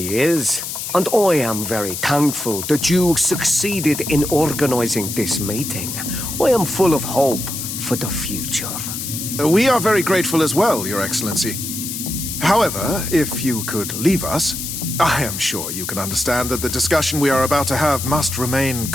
is. And I am very thankful that you succeeded in organizing this meeting. I am full of hope for the future. We are very grateful as well, Your Excellency. However, if you could leave us, I am sure you can understand that the discussion we are about to have must remain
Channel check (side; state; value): left; noise; hiss, 6 dB below the sound